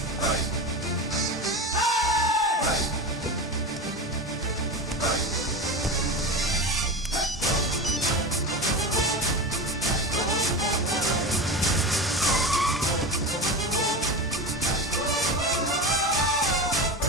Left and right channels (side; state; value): both; normal; correlation 0.25